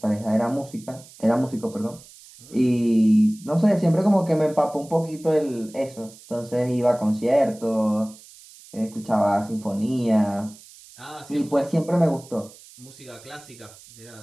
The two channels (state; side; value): noise; right; hiss, 22 dB below the sound